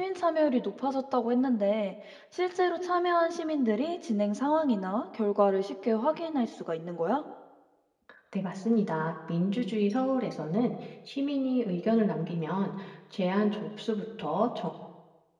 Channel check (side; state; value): both; identical; correlation 1.00